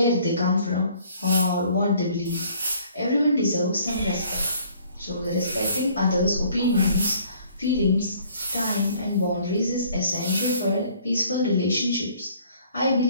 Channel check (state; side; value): inverted; both; correlation -0.58